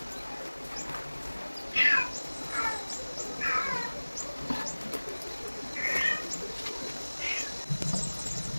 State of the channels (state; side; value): inverted; both; correlation -1.00